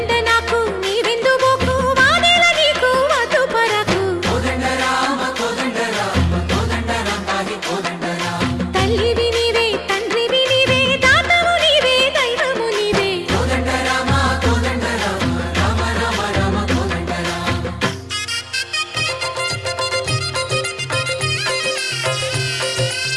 नाकु नी विंदु बोकु वादेल नीकु वधु परकु कोदंड राम पाहि कोदंड राम तल्लिवि नीवे तंड्रिवि नीवे दातवु नीवे दैवमु नीवे कोदंड राम राम राम राम कोदंड राम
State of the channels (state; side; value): identical; both; correlation 1.00